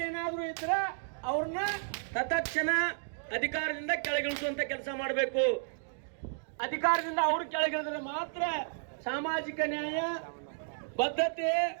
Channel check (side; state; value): left; silent; digital silence